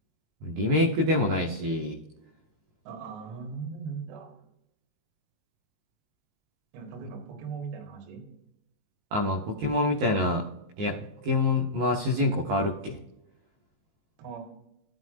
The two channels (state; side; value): late; left; 19 ms